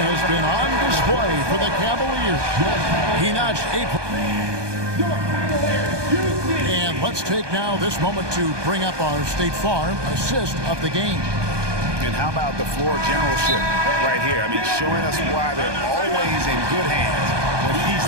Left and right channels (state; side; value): late; left; 1.2 ms